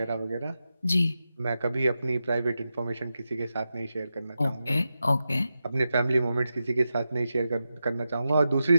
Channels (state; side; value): inverted; both; correlation -0.90